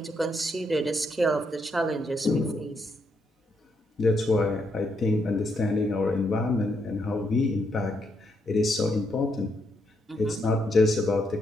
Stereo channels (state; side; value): normal; both; correlation 0.77